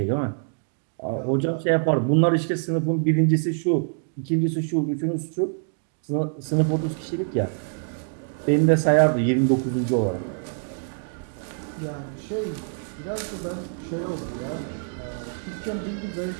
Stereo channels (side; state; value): left; silent; 61 dB below the other